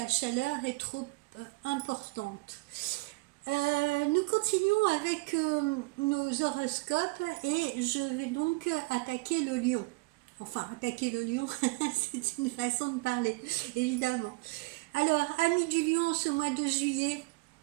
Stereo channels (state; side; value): quieter; left; 24.9 dB